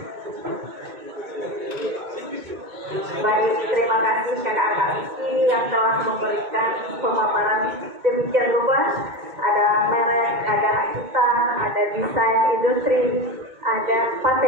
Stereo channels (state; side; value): late; left; 2.2 ms